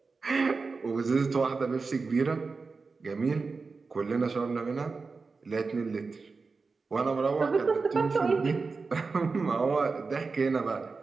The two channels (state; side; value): quieter; left; 4.4 dB